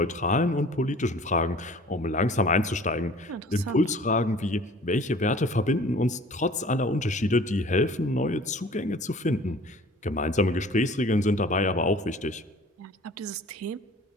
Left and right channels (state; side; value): normal; both; correlation 0.48